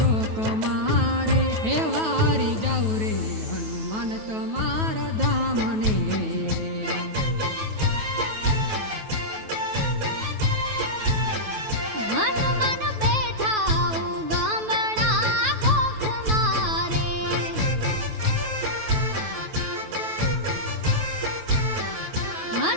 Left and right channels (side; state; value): left; late; 9.3 ms